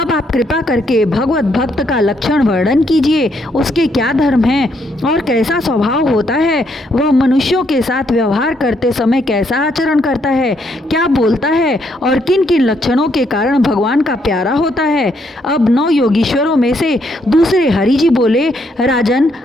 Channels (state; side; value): normal; both; correlation 0.73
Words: आप कृपा करके भगवत भक्त का लक्षण वर्णन कीजिए। उसके क्या धर्म हैं और कैसा स्वभाव होता है? वह मनुष्यों के साथ व्यवहार करते समय कैसा आचरण करता है, क्या बोलता है और किन किन लक्षणों के कारण भगवान का प्यारा होता है? अब 9 योगीश्वरों में से दूसरे हरि जी बोले, राजन,